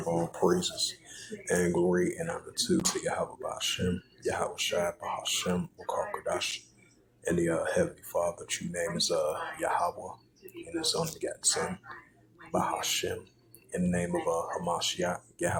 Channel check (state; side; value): identical; both; correlation 1.00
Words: all praises and glory and honor to Yahweh Ba'Shem, Yahweh Shai Ba'Shem, Wakar Kodash, and the Heavenly Father. True name is Yahweh, and His only begotten Son, Ba'Shem, in the name of Hamashiach,